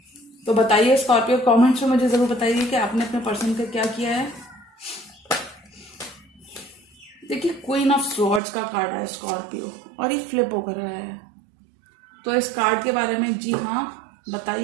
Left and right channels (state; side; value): drops out; left; at 8.4 s